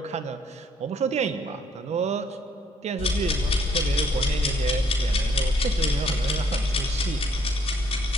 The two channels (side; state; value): both; normal; correlation 0.65